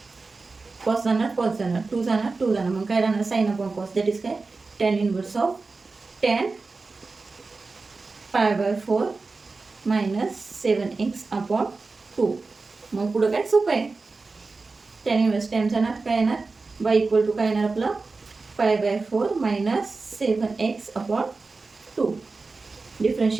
कॉस जाणार 2 जाणार. मग काय राहणार sine upon cos, that is काय tan inverse of tan pi by 4 minus 7x/2. मग पुढं काय सोपं आहे, टॅन इनवर्स टॅन जाणार, काय येणार बाय इक्वल टू काय येणार आपलं पाय बाय 4 मायनस 7x/2.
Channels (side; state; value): left; quieter; 3.9 dB